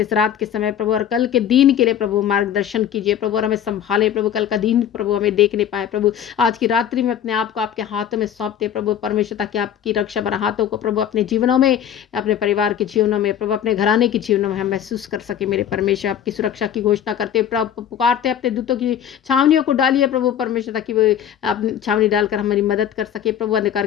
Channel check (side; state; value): right; quieter; 9.7 dB